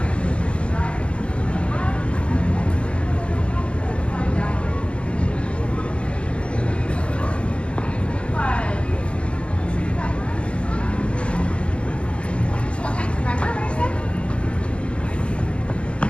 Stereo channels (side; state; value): right; late; 0.059 ms